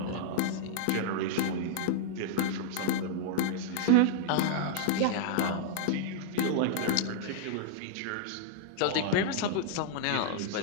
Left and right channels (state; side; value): different; both; correlation -0.01